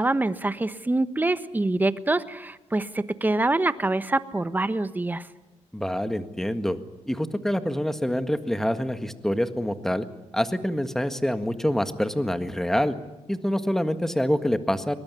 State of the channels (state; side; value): normal; both; correlation 0.93